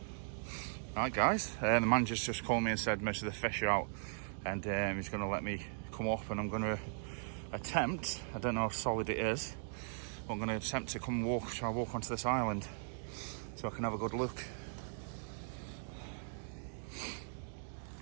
Right, guys, the manager's just called me and said most of the fish are out, and he's going to let me come up, and I'm going to attempt, I don't know how solid it is, but I'm going to attempt to try and walk onto this island so I can have a good look.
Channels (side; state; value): left; silent; digital silence